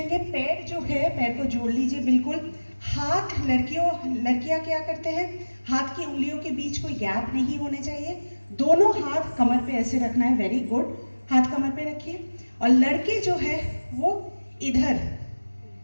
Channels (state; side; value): inverted; both; correlation -1.00